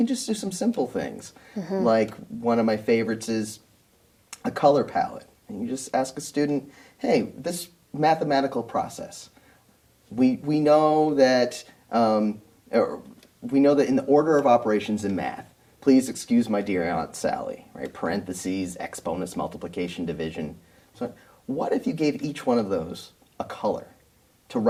just do some simple things. Like one of my favorites is a color palette. And you just ask a student, hey, this mathematical process, we know that in the order of operations in math, please excuse my dear Aunt Sally, right? Parentheses, exponents, multiplication, division. So what if you gave each one of those a color to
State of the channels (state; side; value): identical; both; correlation 1.00